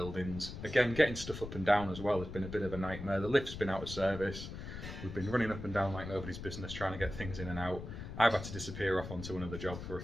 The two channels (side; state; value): left; noise; rumble, 9 dB below the sound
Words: Again, getting stuff up and down as well has been a bit of a nightmare. The lift's been out of service. We've been running up and down like nobody's business trying to get things in and out. I've had to disappear off onto another job for a